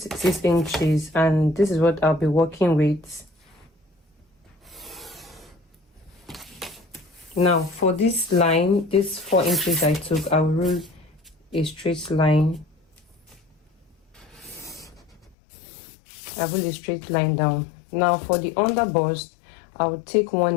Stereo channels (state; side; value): drops out; right; at 15.4 s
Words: inches, and this is what I'll be working with. Now for this line, this 4 inches I took, I will rule a straight line. I will a straight line down. Now for the under bust, I will take